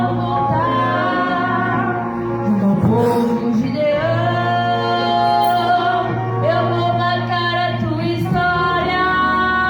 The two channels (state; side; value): identical; both; correlation 1.00